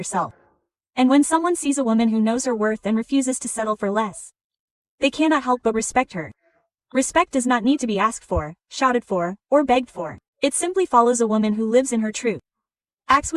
And when someone sees a woman who knows her worth and refuses to settle for less, they cannot help but respect her. Respect does not need to be asked for, shouted for, or begged for. It simply follows a woman who lives in her truth, acts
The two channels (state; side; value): identical; both; correlation 1.00